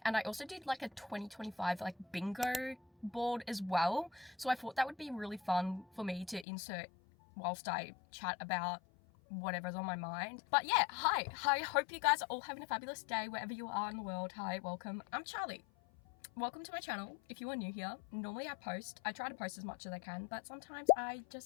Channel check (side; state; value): right; drops out; at 6.5 s